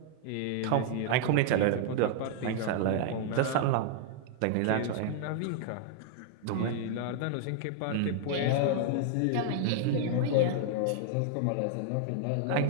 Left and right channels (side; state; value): both; different; correlation 0.00